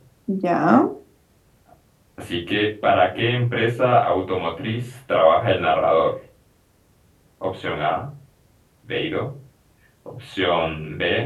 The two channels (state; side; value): identical; both; correlation 1.00